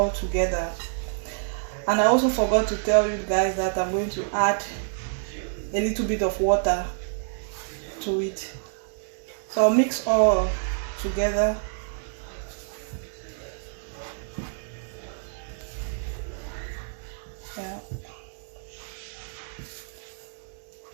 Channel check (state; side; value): silent; left; digital silence